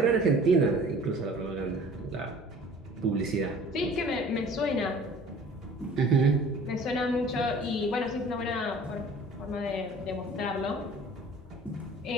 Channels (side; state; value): both; normal; correlation 0.48